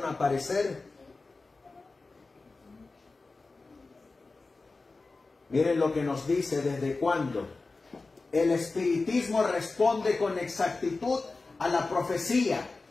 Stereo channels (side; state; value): right; quieter; 3.7 dB